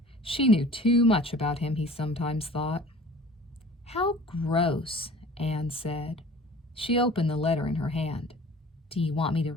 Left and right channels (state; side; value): normal; both; correlation 0.45